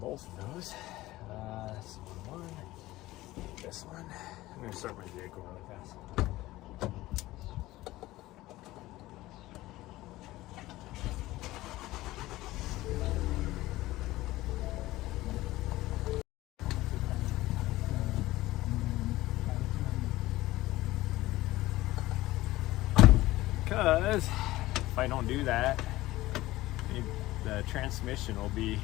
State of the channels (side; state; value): right; quieter; 17.4 dB